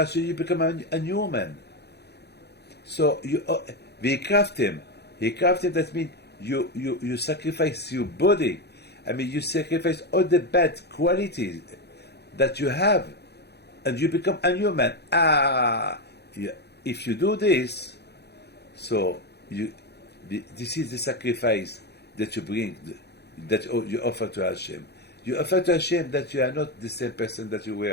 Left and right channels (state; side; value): late; right; 0.48 ms